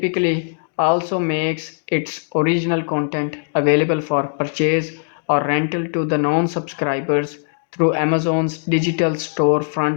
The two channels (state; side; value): silent; right; digital silence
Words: also makes its original content available for purchase or rental to the non subscribers through Amazon's digital